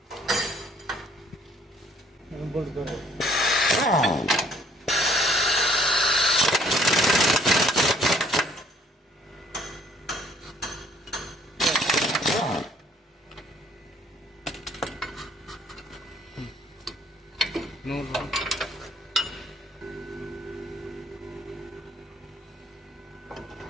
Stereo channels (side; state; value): both; normal; correlation 0.61